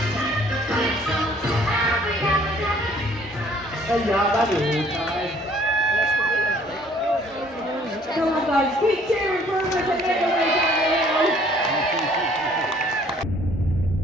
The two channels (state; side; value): normal; both; correlation 0.58